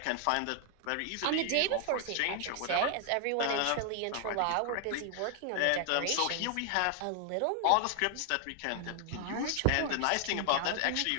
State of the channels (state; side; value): different; both; correlation 0.00